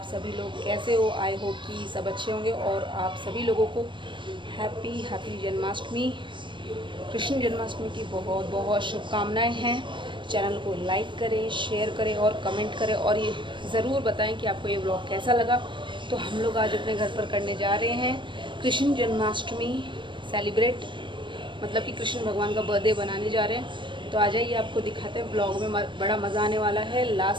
सभी लोग कैसे हो? आई होप कि सब अच्छे होंगे और आप सभी लोगों को हैप्पी जन्माष्टमी, कृष्ण जन्माष्टमी की बहुत बहुत शुभकामनाएं हैं। चैनल को लाइक करें, शेयर करें और कमेंट करें और ये ज़रूर बताएं कि आपको ये ब्लॉग कैसा लगा। तो हम लोग आज अपने घर पर करने जा रहे हैं कृष्ण जन्माष्टमी सेलिब्रेट, मतलब कि कृष्ण भगवान का बर्थडे बनाने जा रहे हैं। तो आ जाइए, आपको दिखाते हैं। ब्लॉग में बड़ा मज़ा आने वाला है।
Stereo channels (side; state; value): left; late; 0.23 ms